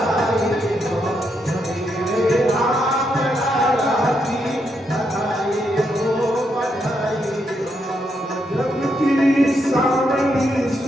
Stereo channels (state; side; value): normal; both; correlation 0.79